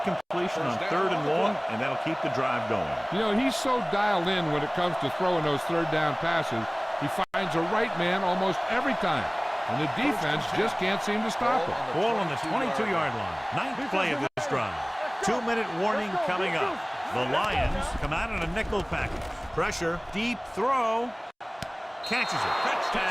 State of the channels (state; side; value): identical; both; correlation 1.00